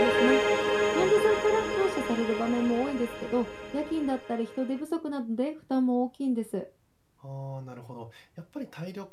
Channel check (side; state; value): both; identical; correlation 1.00